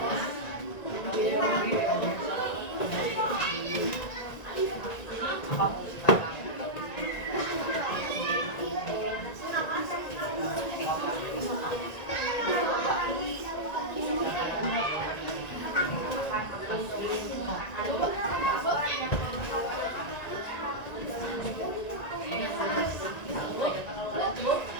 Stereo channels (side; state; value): right; late; 1.9 ms